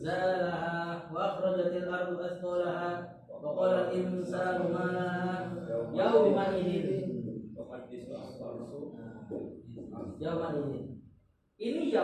wa akhrajatil ardu athqalaha wa qala al-insanu ma laha yawma idzin. Yauma ini. Ini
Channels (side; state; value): both; identical; correlation 1.00